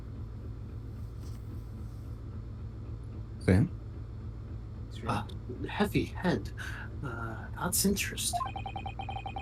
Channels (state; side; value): identical; both; correlation 1.00